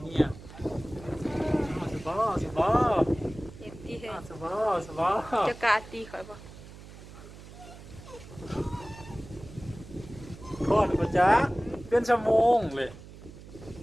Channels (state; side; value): noise; right; hum, 17 dB below the sound